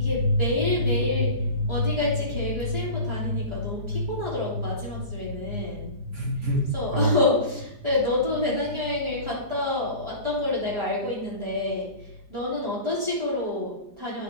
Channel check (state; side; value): late; left; 4.9 ms